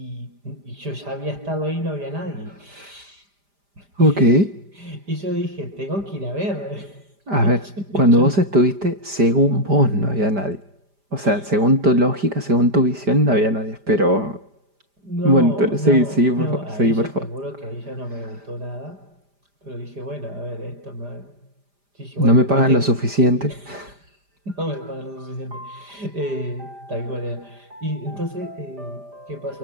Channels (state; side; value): late; left; 5.0 ms